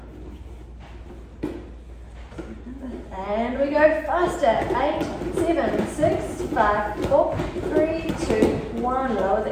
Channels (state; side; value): identical; both; correlation 1.00